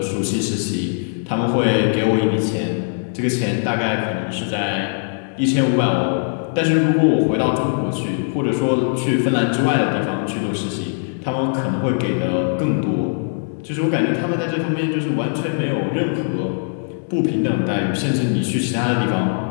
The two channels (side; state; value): right; silent; digital silence